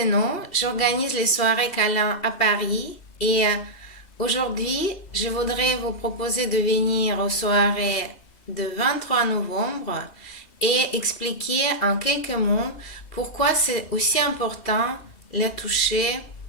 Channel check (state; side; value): late; right; 2.6 ms